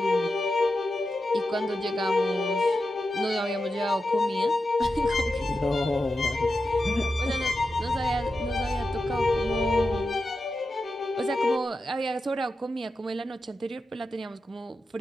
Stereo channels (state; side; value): normal; both; correlation 0.90